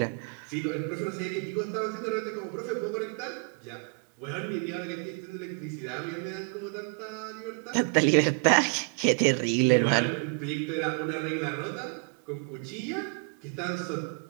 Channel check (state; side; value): quieter; left; 38.7 dB